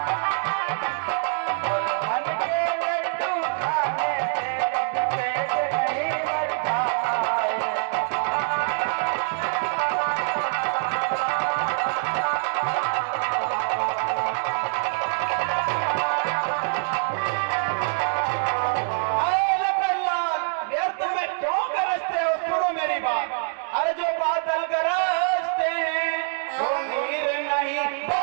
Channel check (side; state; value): left; silent; digital silence